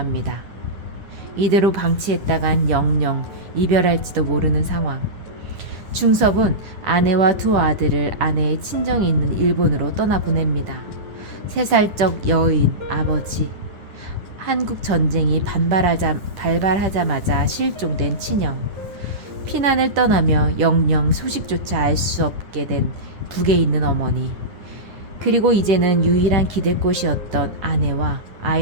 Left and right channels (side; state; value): left; late; 10 ms